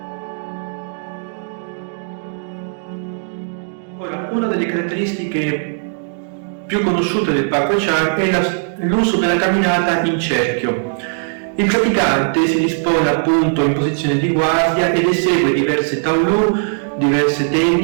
Ora, una delle caratteristiche più conosciute del Pak Hwa-chant è l'uso della camminata in cerchio. Il praticante si dispone appunto in posizione di guardia ed esegue diverse taolu, diverse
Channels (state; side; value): silent; left; digital silence